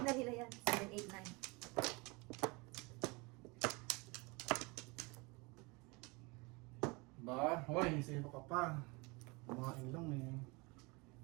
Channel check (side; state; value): left; quieter; 26.9 dB